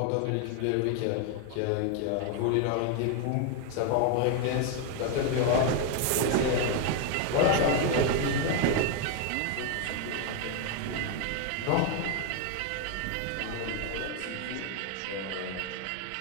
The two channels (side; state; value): both; different; correlation 0.01